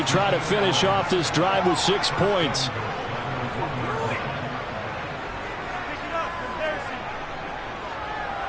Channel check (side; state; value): both; identical; correlation 1.00